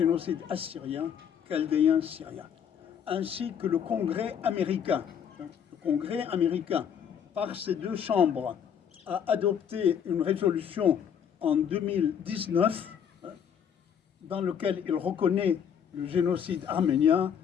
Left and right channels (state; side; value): quieter; right; 8.1 dB